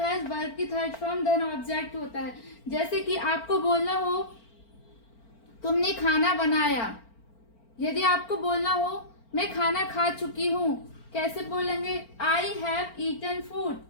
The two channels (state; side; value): late; right; 4.4 ms